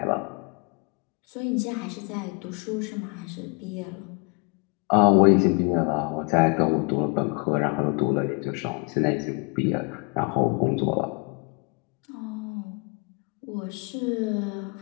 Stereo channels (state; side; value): quieter; right; 32.3 dB